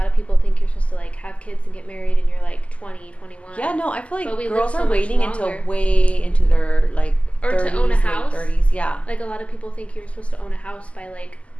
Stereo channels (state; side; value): late; right; 0.062 ms